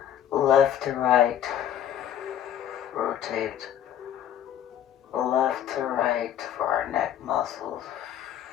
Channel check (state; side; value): quieter; right; 10.5 dB